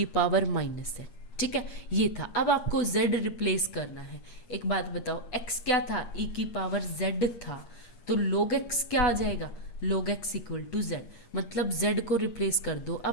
पावर माइनस z, ठीक है। ये था। अब आपको z रिप्लेस करना है। एक बात बताओ, x क्या था, e की पावर z था, तो log x क्या आ जाएगा, log x equal to z, मतलब z को रिप्लेस कर दो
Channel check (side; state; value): right; late; 8.5 ms